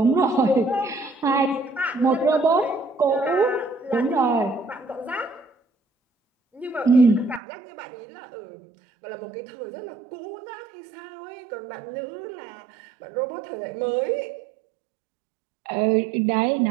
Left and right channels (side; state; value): left; drops out; at 7.4 s